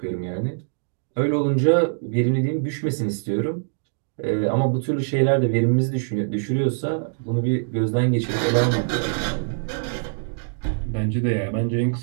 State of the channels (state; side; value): silent; left; digital silence